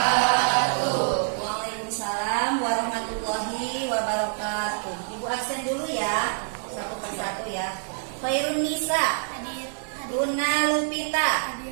Absen dulu ya, satu persatu ya. Khairun Nisa, Hadir. Luna Lupita, Hadir.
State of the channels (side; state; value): left; silent; digital silence